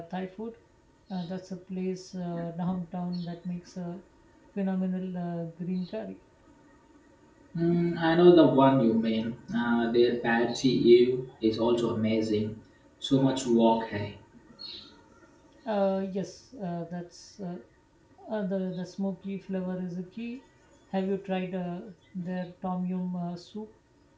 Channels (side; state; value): both; identical; correlation 1.00